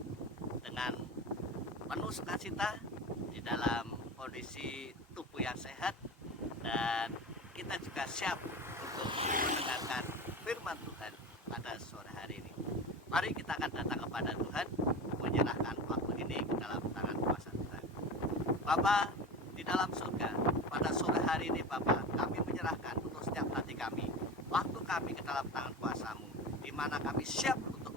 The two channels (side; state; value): both; normal; correlation 0.29